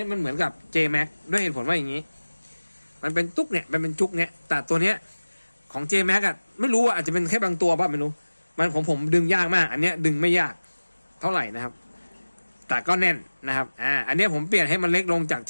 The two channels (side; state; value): both; inverted; correlation -1.00